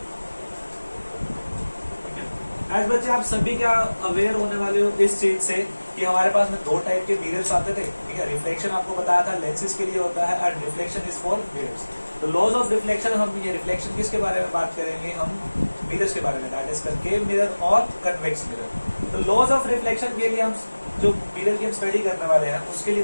As बच्चे आप सभी क्या अवेयर होने वाले हो इस चीज से कि हमारे पास में दो टाइप के मिरर्स आते थे, ठीक है। रिफ्लेक्शन आपको बताया था लेंसेज के लिए होता है and reflection is for mirrors. तो लॉज ऑफ रिफ्लेक्शन, हम ये रिफ्लेक्शन किसके बारे में बात करेंगे, हम मिरर्स के बारे में, दैट इज कनकेव मिरर और कन्वेक्स मिरर। तो लॉज ऑफ रिफ्लेक्शन के लिए हम जो मिरर की हम स्टडी करने वाले हैं उसके लिए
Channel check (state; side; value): inverted; both; correlation -1.00